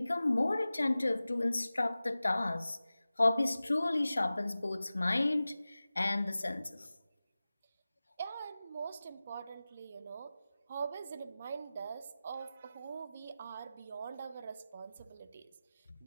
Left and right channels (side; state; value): both; inverted; correlation -0.96